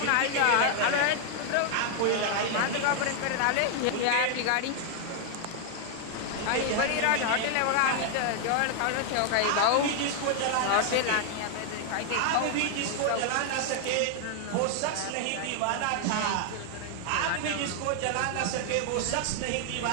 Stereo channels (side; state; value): both; different; correlation 0.00